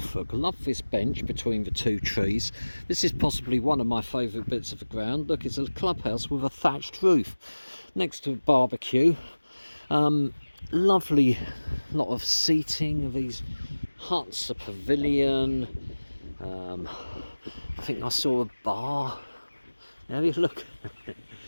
Love this bench between the two trees. This is possibly one of my favourite bits of the ground. Look, it's a clubhouse with a thatched roof next to a barbecue. Lovely lot of seating, these huts, a pavilion. I think I saw a bar. There you look.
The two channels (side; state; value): both; inverted; correlation -1.00